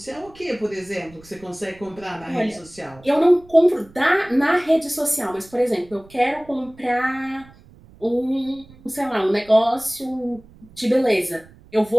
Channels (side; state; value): right; noise; rumble, 24 dB below the sound